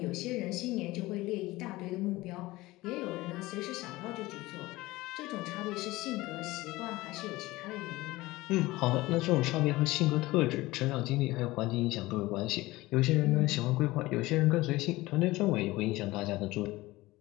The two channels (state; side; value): quieter; right; 19.4 dB